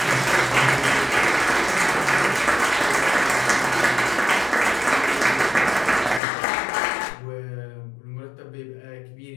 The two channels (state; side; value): drops out; right; at 6.2 s